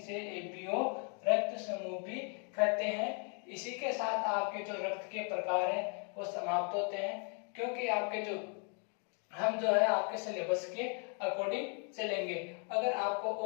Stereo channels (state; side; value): quieter; right; 39.6 dB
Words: एबीओ रक्त समूह भी कहते हैं। इसी के साथ आपके जो रक्त के प्रकार हैं वो समाप्त होते हैं, क्योंकि आपके जो हम जो है आपके सिलेबस के अकॉर्डिंग चलेंगे। अगर आपको